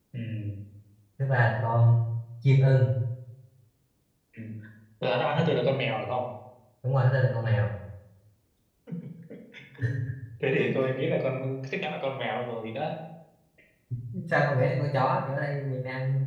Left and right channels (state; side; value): identical; both; correlation 1.00